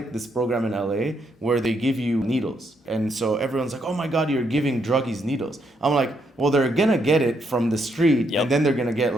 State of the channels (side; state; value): both; normal; correlation 0.76